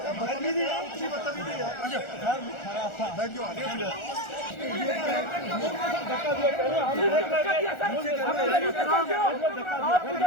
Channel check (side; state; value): right; late; 1.4 ms